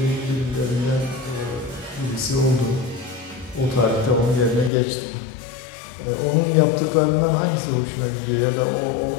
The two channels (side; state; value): right; drops out; at 4.7 s